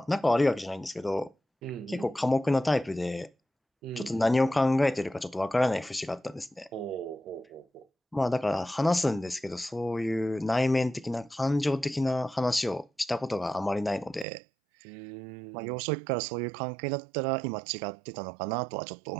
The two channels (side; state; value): left; drops out; at 14.2 s